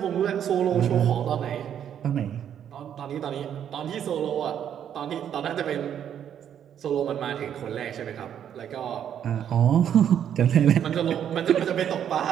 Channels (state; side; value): quieter; left; 9.3 dB